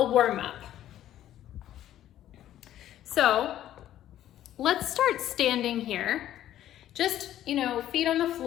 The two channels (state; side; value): quieter; right; 12.3 dB